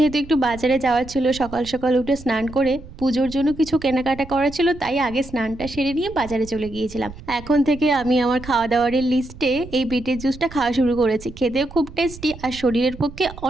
একটু বাজারে যাওয়ার ছিল, সকাল সকাল উঠে স্নান করে পুজোর জন্য কিছু কেনাকাটা করা ছিল, তাই আগে স্নানটা সেরে নিয়ে বাজারে চলে গিয়েছিলাম। এখন থেকে আমি আমার খাওয়া দাওয়ারের লিস্টে এই বিটের জুসটা খাওয়া শুরু করেছি। খেতেও খুব টেস্টি আর শরীরের পক্ষে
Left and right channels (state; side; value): noise; right; rumble, 16 dB below the sound